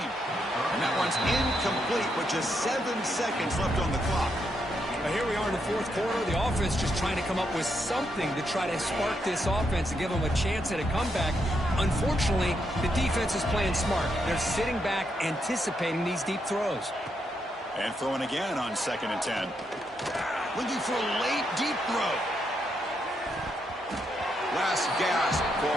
And that one's incomplete with just 7 seconds left on the clock. Now here we are in the 4th quarter. The offense just trying to come up with something to try to spark this offense and give them a chance at a comeback. Unfortunately, the defense is playing smart. They're sitting back, anticipating these deep throws. And throwing again on 2nd and 10. Looking for a late deep throw. Last gasp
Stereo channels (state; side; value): normal; both; correlation 0.80